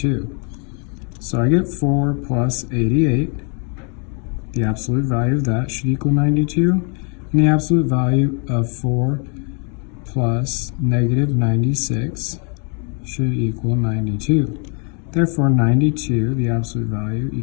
So I get 4 plus 88. The absolute value of that should equal 92, and the absolute value of 4 plus negative 96 should equal 92. Therefore, 92, the absolute value,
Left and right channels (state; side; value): quieter; right; 37.8 dB